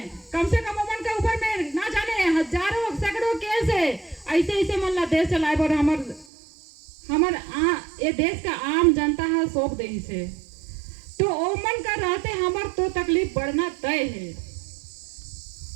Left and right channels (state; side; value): drops out; left; at 6.2 s